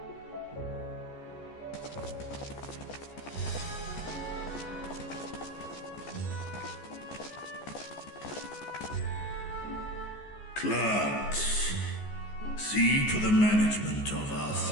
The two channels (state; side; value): late; right; 14 ms